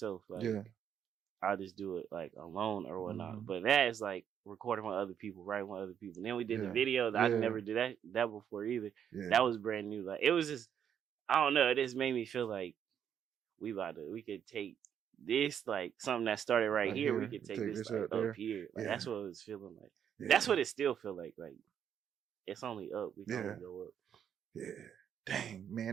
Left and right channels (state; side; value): quieter; left; 8.7 dB